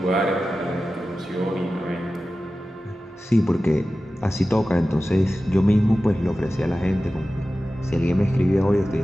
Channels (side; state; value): both; normal; correlation 0.95